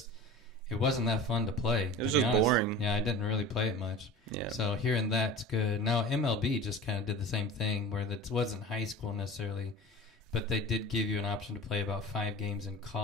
it wasn't that fun to play. It was just boring. Yeah, I didn't really play it much. Yeah. So hearing that's good. Now, MLB just kind of did the same thing where it wasn't high school necessarily, but they did give you an option to play about 5 games in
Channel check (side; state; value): both; normal; correlation 0.36